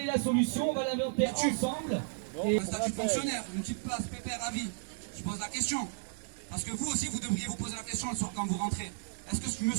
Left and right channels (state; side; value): silent; left; 55 dB below the other